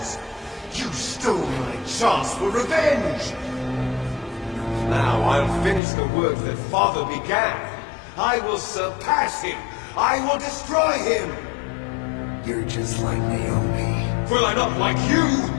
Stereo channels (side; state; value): right; drops out; at 5.8 s